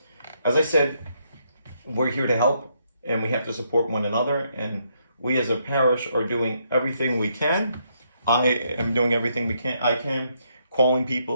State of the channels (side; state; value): both; inverted; correlation -0.75